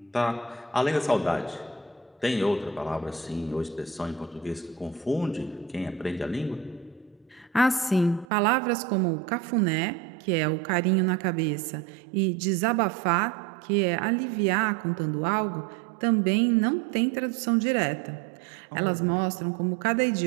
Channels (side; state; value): left; drops out; at 8.2 s